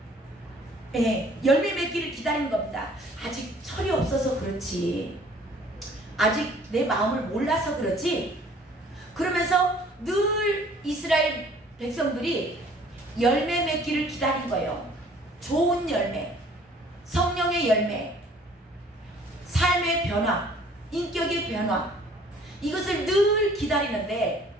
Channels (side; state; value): both; normal; correlation 0.55